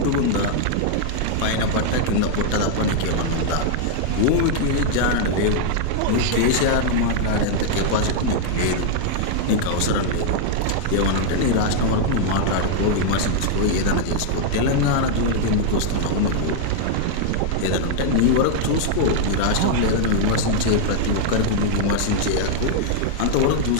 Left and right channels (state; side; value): different; both; correlation 0.00